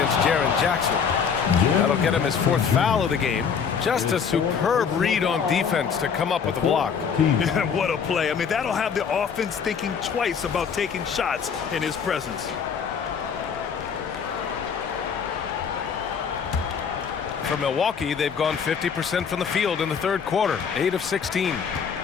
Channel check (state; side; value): quieter; right; 6.7 dB